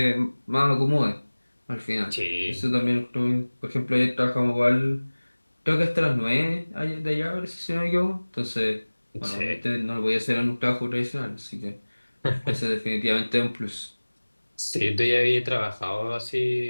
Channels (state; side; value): inverted; both; correlation -1.00